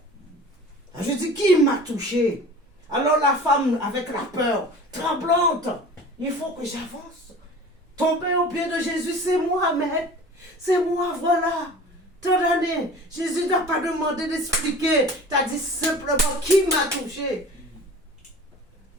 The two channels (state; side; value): normal; both; correlation 0.41